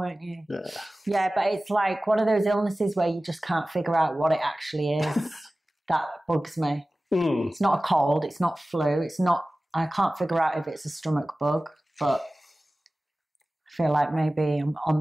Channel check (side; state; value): both; normal; correlation 0.97